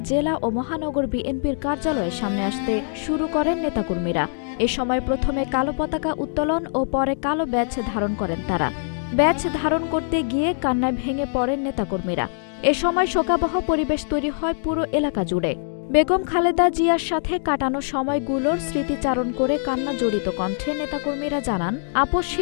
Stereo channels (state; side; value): silent; right; digital silence